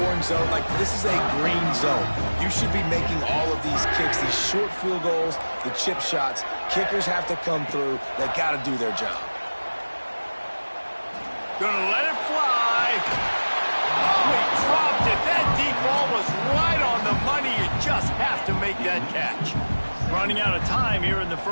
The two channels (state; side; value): inverted; both; correlation -1.00